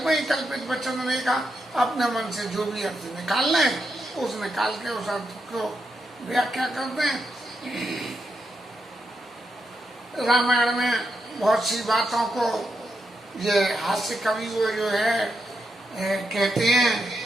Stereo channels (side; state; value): both; normal; correlation 0.84